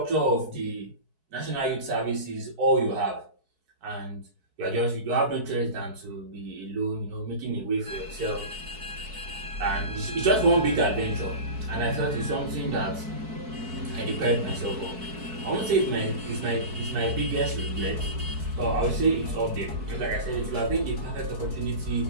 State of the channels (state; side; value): late; left; 4.6 ms